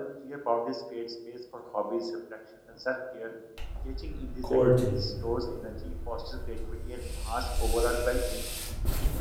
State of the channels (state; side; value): identical; both; correlation 1.00